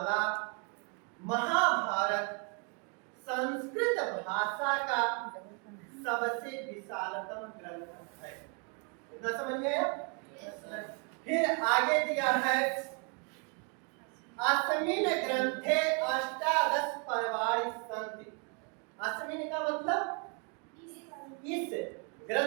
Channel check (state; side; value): quieter; left; 36.9 dB